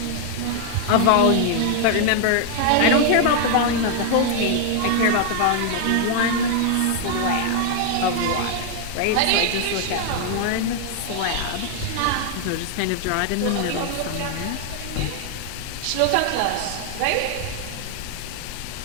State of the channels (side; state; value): both; different; correlation 0.00